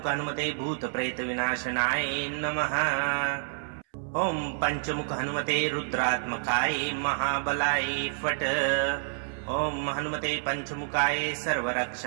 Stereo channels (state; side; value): silent; left; 59 dB below the other